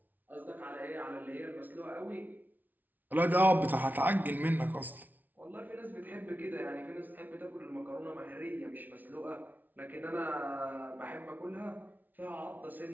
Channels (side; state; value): left; late; 0.081 ms